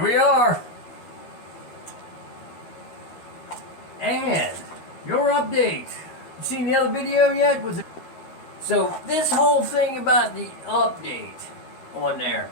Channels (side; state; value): right; late; 13 ms